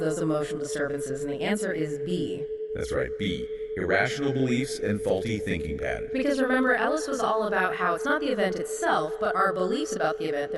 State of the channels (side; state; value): both; identical; correlation 1.00